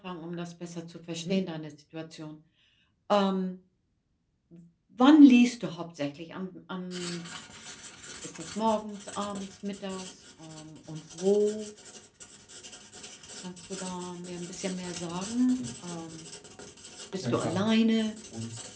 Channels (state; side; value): identical; both; correlation 1.00